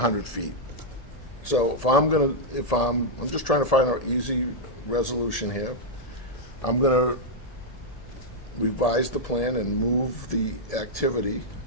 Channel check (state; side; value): late; right; 1.7 ms